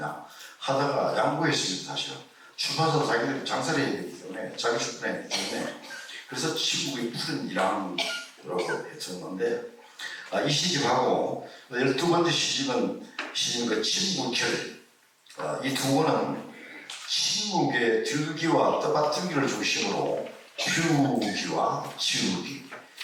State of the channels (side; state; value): both; identical; correlation 1.00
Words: 하다가 양보했습니다. 사실은 출판사도 자기들이 장사를 해야 되기 때문에 자기 출판해야 되기 때문에 그래서 침묵의 푸른 1학이라고 했었는데 이 시집하고 12번째 시집은 침묵결. 이 두 권은 침묵의 들기와 떠받들기를 중심으로 피우기와 지우기,